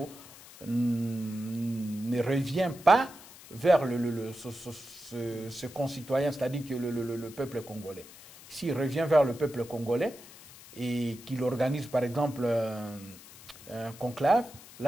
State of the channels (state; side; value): noise; left; hiss, 19 dB below the sound